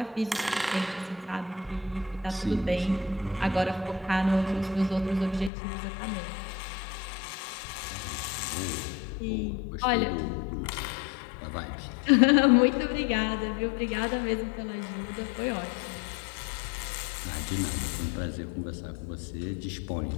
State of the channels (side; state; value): right; drops out; at 5.5 s